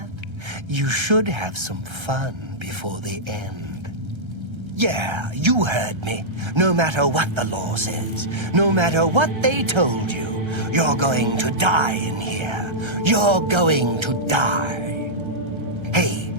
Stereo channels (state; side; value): late; left; 1.3 ms